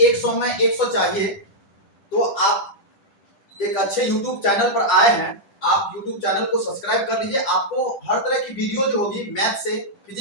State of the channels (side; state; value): right; late; 10 ms